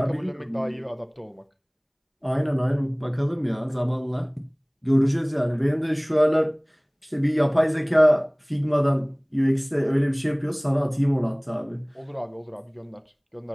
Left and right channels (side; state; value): both; identical; correlation 1.00